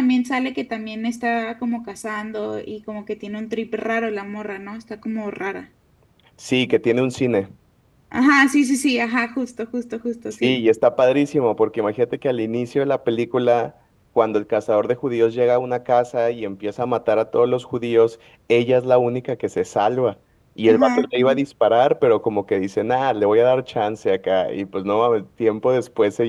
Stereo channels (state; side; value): identical; both; correlation 1.00